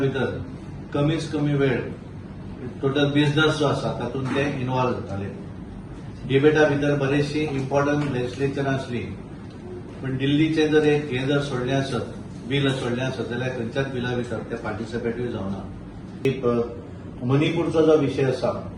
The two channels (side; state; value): both; identical; correlation 1.00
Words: कमीच कमी वेळ टोटल बिझनेस जो आसा तातूंत ते इन्वॉल्व जाताले. डिबेटा भितर बरीचशी इम्पॉर्टंट लेजिस्लेचर आसली, पण दिल्लीचे जर एक हे जर सोडलें आसत, बील सोडलें आसत जाल्यार खंयच्याच बिला भितर ते पार्टिसिपेटूय जावना. मणिपूरचो जो विशय आसा